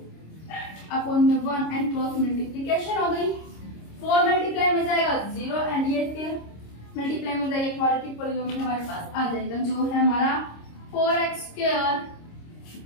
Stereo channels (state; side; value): late; right; 26 ms